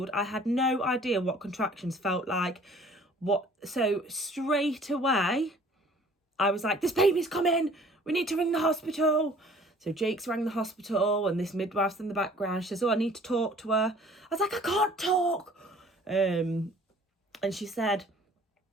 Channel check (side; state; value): both; normal; correlation 0.53